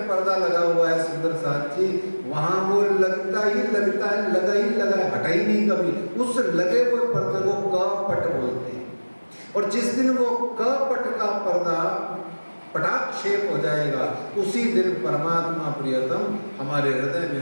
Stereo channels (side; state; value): both; inverted; correlation -1.00